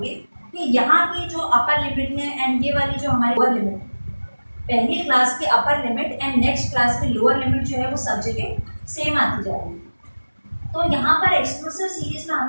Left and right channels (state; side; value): inverted; both; correlation -1.00